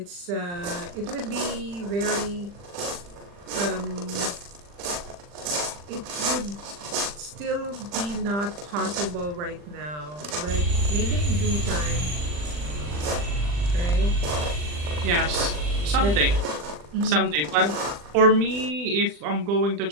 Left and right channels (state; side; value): late; left; 40 ms